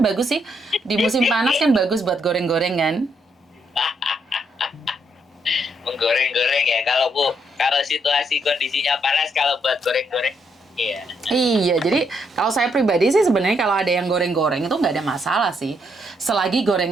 bagus sih. Di musim panas kan bagus buat goreng-goreng kan. Menggoreng-goreng ya, kalau situasi kondisinya panas, kalau buat goreng-goreng. Iya, jadi kalau saya pribadi sih sebenarnya kalau ada yang goreng-goreng itu nggak ada masalah sih. Selagi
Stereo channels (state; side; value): normal; both; correlation 0.75